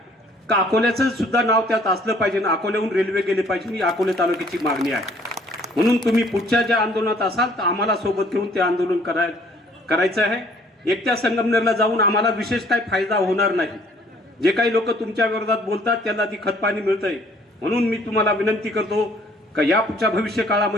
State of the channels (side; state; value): both; normal; correlation 0.59